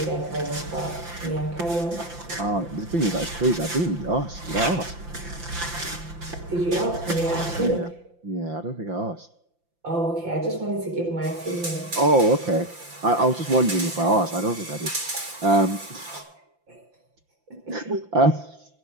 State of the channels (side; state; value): left; late; 5.8 ms